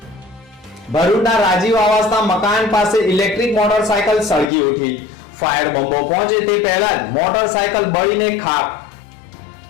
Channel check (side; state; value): right; drops out; at 4.5 s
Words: ભરૂચના રાજીવ આવાસના મકાન પાસે ઇલેક્ટ્રિક મોટરસાયકલ સળગી ઉઠી। ફાયર બંબો પહોંચે તે પહેલા જ મોટરસાયકલ બળીને ખાક।